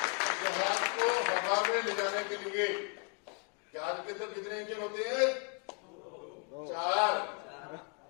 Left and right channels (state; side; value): quieter; right; 35.8 dB